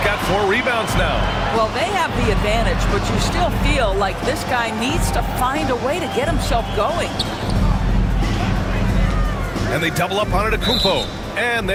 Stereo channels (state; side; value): identical; both; correlation 1.00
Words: got 4 rebounds now. Well, they have the advantage, but you still feel like this guy needs to find a way to get himself going. And they double up Antetokounmpo. And